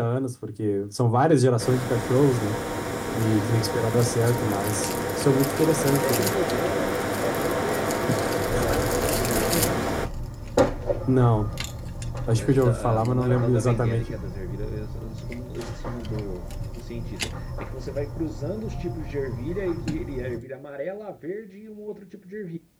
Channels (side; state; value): both; identical; correlation 1.00